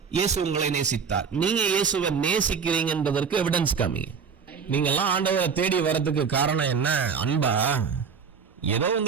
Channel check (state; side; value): quieter; left; 6.2 dB